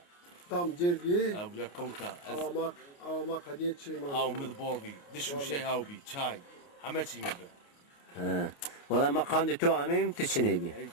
Tam cergi. Abu ya konka. Avamak hadiye çiğma. Av mid bolvi. Dişu şey av bi. Çay. Hameçi mi be? Ha. Valla ma kandı tu amim tiçini bi. Ey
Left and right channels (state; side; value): late; right; 29 ms